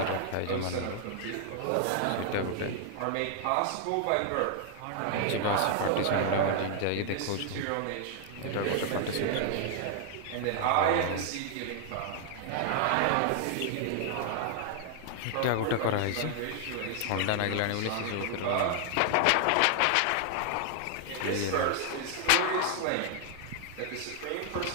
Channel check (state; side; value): different; both; correlation 0.00